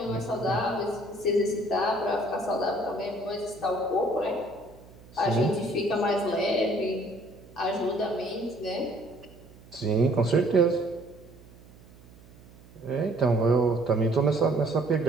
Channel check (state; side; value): noise; right; hum, 23 dB below the sound